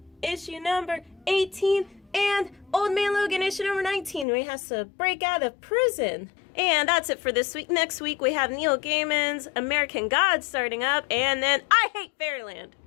issue number 18, and Old Man Logan issue number 19, where he has to break out of prison. And that's it for this week. Next week we have Neil Gaiman's American Gods starting up, and then I Hate Fairyland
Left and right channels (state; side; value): drops out; right; at 4.2 s